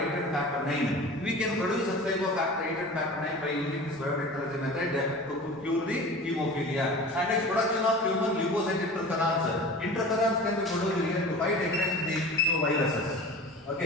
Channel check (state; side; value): normal; both; correlation 0.37